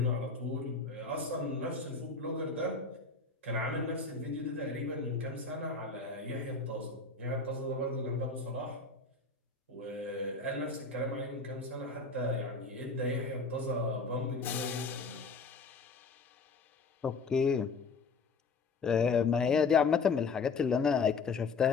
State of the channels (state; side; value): quieter; right; 4.3 dB